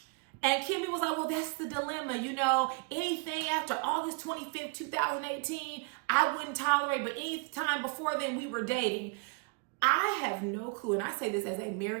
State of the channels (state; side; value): quieter; left; 34.3 dB